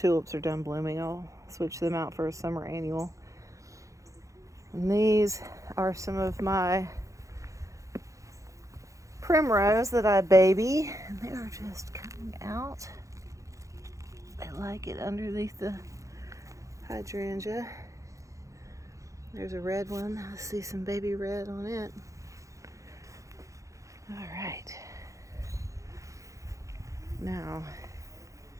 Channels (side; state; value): left; late; 0.15 ms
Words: are done blooming, I'll switch them out for a summer annual. And these are some of my primrose that I baby, and they're just coming out. I like it underneath the hydrangea. There's a red one. I see some baby red on it. All right. Now,